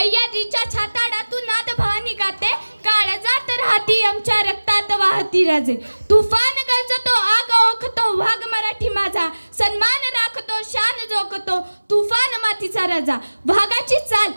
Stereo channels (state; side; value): inverted; both; correlation -1.00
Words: छाताडातून नाद भवानी गाते, काळजात राहती आमच्या रक्तात वाहती राजे। तुफान गरजतो आग ओखतो वाघ मराठी माझा, सन्मान राखतो शान जोखतो तुफान मातीचा राजा। वाघाची चाल